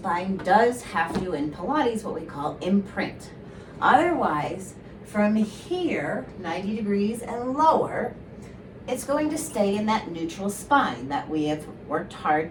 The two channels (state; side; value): identical; both; correlation 1.00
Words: does have to, in Pilates, what we call imprint. Otherwise, from here, 90 degrees and lower, it's going to stay in that neutral spine that we have worked hard